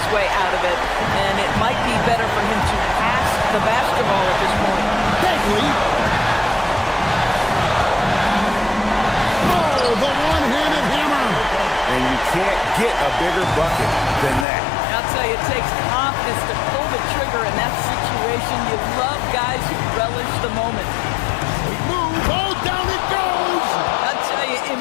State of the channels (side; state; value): right; drops out; at 14.5 s